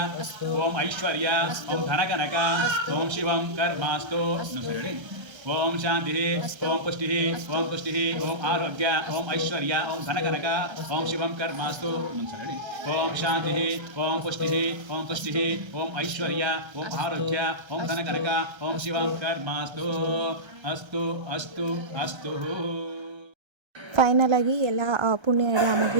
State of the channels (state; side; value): late; left; 1.3 ms